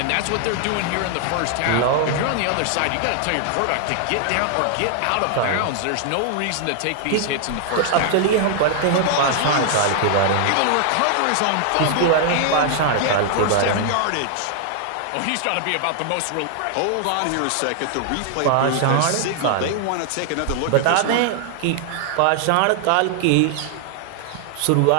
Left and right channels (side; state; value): both; different; correlation 0.00